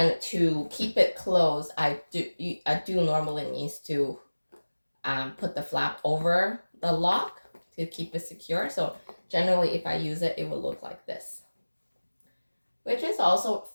to keep it closed, I do normally need to put the flap over the lock to keep it secure. So generally, if I use it, it will look like this, which is also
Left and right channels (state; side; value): inverted; both; correlation -1.00